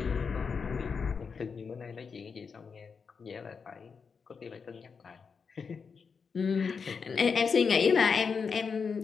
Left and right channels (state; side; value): quieter; right; 5.6 dB